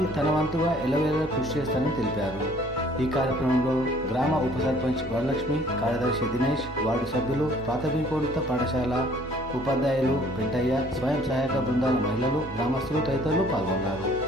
తన వంతుగా ఎల్లవేళలా కృషి చేస్తానని తెలిపారు. ఈ కార్యక్రమంలో గ్రామ ఉప సర్పంచ్ వరలక్ష్మి, కార్యదర్శి దినేష్, వార్డు సభ్యులు, ప్రాథమికోన్నత పాఠశాల ఉపాధ్యాయులు, పెంటయ్య, స్వయం సహాయక బృందాల మహిళలు, గ్రామస్తులు తదితరులు పాల్గొన్నారు.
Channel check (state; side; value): normal; both; correlation 0.57